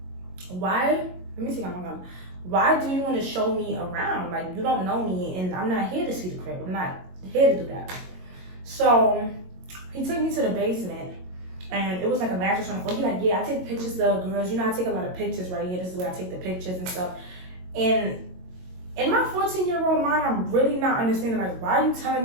why? Let me see how I'm going. Why do you want to show me around? Like, you don't know me and I'm not here to see the crib. I'm not here to do that. So he took me to the basement. And it was like a mattress on the floor. He's like, yeah, I take pictures of girls. You know, I take a lot of pictures right here. This is where I take the pictures and stuff. And in my 14-year-old mind, I'm really not understanding, like, why are you telling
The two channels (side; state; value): left; late; 22 ms